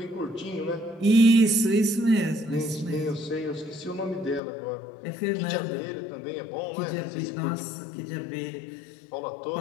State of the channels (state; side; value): drops out; right; at 4.4 s